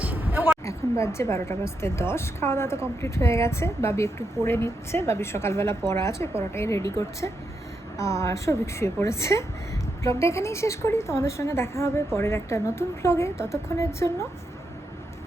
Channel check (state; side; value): normal; both; correlation 0.83